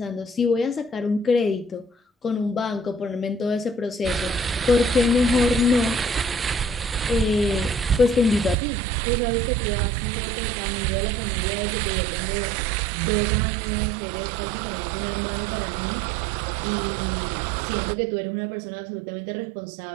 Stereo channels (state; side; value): drops out; left; at 8.6 s